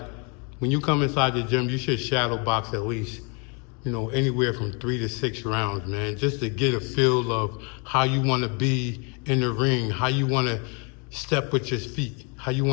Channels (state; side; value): quieter; right; 34.8 dB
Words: when you come inside the gym, you should shadow box at least, anywhere from 3 to 6 rounds, man, just to get a feel of how you want to be in the ring, how you want to step with your feet, how you